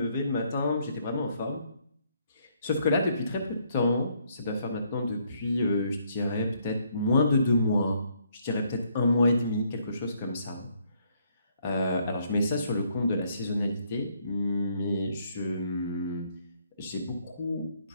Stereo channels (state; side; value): inverted; both; correlation -0.69